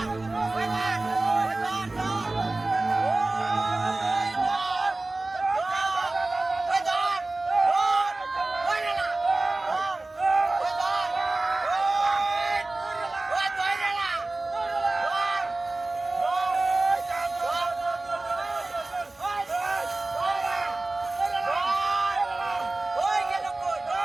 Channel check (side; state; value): left; quieter; 3.0 dB